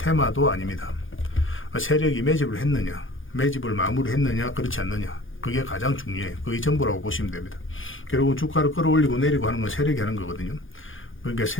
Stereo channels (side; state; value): right; late; 0.58 ms